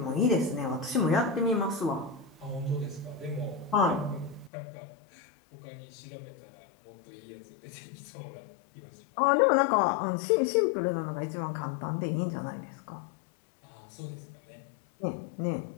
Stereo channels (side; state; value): right; drops out; at 4.5 s